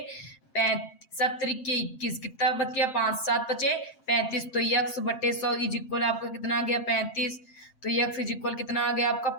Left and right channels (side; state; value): right; late; 7.6 ms